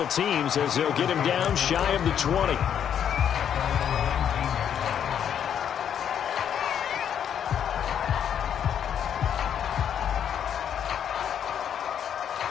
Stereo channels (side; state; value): right; quieter; 8.9 dB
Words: teams as they'll get him down shy of the 20.